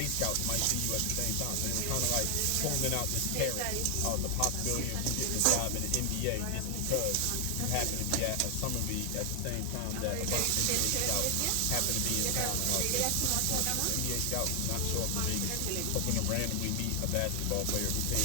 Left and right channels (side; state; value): both; different; correlation 0.00